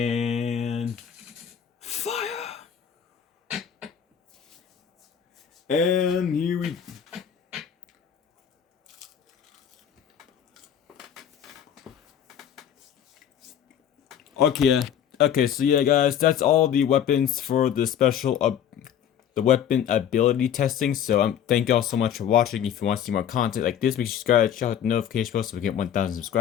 Fire! And here we... Okay, so yeah guys, that's all the weapons for the special the weapon ability testing. So thank y'all so much for watching. If you want to see more content like this, make sure you subscribe, check out the notification bell so we get 1,000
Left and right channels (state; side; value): quieter; right; 9.2 dB